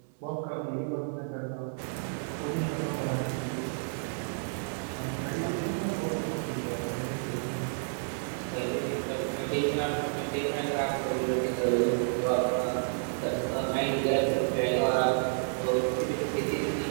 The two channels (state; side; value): silent; left; 57 dB below the other